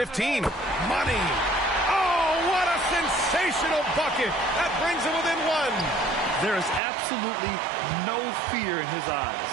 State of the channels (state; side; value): drops out; left; at 6.8 s